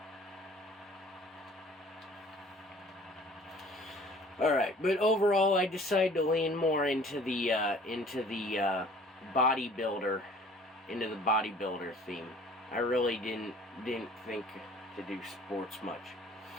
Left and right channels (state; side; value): normal; both; correlation 0.51